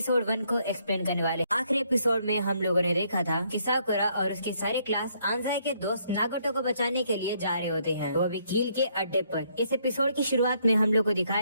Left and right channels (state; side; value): inverted; both; correlation -0.70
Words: 1 को एक्सप्लेन करने वाले। आखिरी एपिसोड में हम लोगों ने देखा था कि साकुरा और उसकी सारी क्लास आंजाई के दोस्त नागोटो को बचाने के लिए जा रहे होते हैं, वो भी कील के अड्डे पर। इस एपिसोड की शुरुआत में हम लोग को